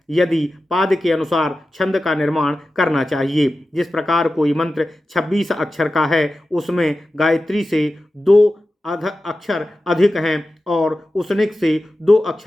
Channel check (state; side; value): normal; both; correlation 0.93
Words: यदि पाद के अनुसार छंद का निर्माण करना चाहिए। जिस प्रकार कोई मंत्र 26 अक्षर का है उसमें गायत्री से 2 अक्षर अधिक हैं और उसनिक से 2